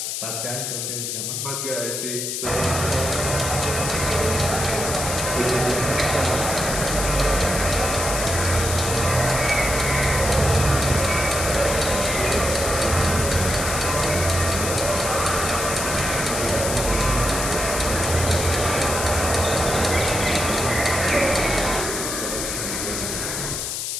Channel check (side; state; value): left; noise; hiss, 3 dB below the sound